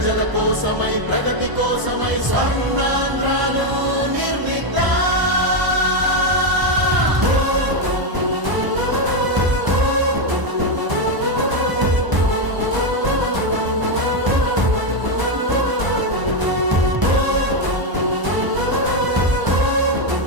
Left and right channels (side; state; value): left; late; 1.0 ms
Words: కోసమై ప్రగతి కోసమై స్వర్ణాంధ్రాలు